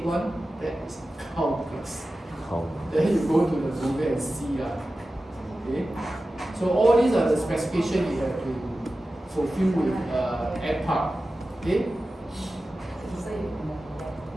one. That is cow grass. Cow. Then you go to the movie and see okay. So all these are the specifications you have to fulfill with ag park. Okay.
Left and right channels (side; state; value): both; normal; correlation 0.94